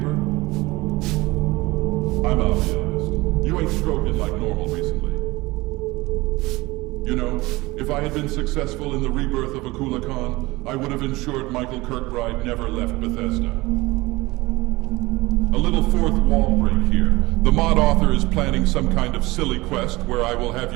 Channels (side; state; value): left; quieter; 21.2 dB